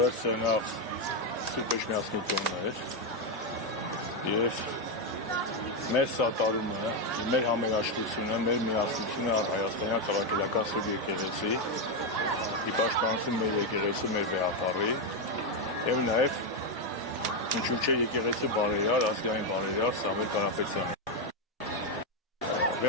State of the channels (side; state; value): both; normal; correlation 0.04